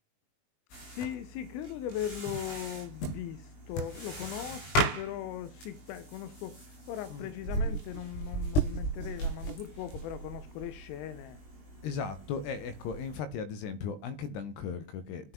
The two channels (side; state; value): right; late; 20 ms